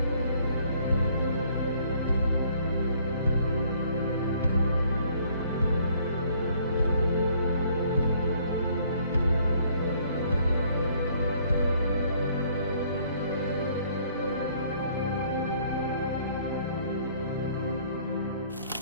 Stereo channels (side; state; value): both; inverted; correlation -0.61